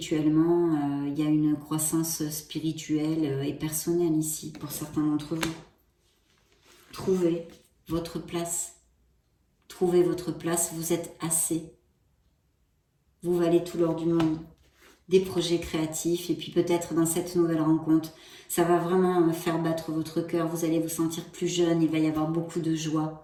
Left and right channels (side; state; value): both; identical; correlation 1.00